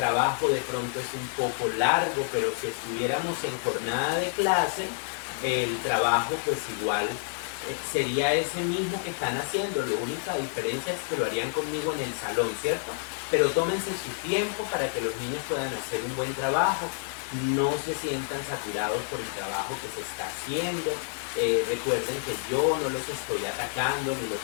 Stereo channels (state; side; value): silent; right; 59 dB below the other